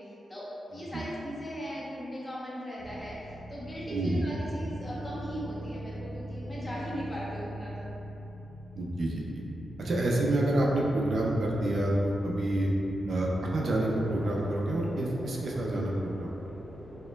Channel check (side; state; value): both; normal; correlation 0.87